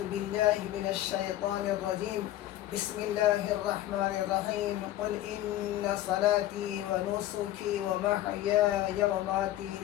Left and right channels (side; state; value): right; quieter; 14.1 dB